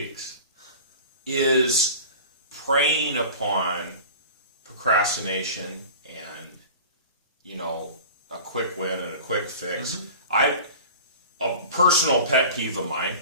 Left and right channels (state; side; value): inverted; both; correlation -0.38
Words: is preying upon procrastination and, a quick win and a quick fix. A personal pet peeve of mine,